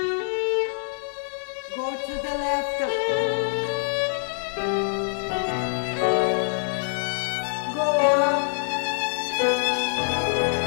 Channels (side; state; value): right; silent; digital silence